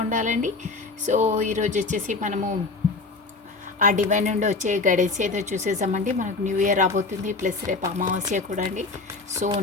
ఉండాలండి. సో ఈరోజు వచ్చేసి మనము ఆ డివైన్ నుండి వచ్చే గైడెన్స్ ఏదో చూసేసామండి. మనకు న్యూ ఇయర్ రాబోతుంది, ప్లస్ రేపు అమావాస్య కూడా అండి. సో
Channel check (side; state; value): right; quieter; 3.8 dB